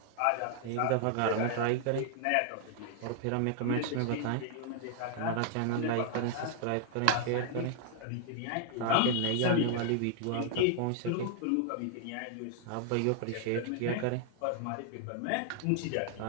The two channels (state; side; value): different; both; correlation 0.00